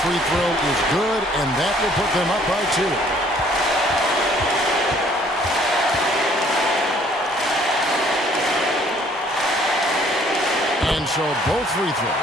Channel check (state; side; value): normal; both; correlation 0.60